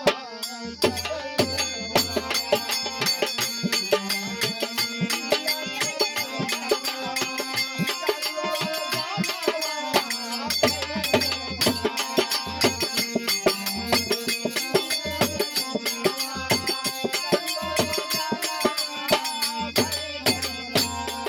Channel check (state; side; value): identical; both; correlation 1.00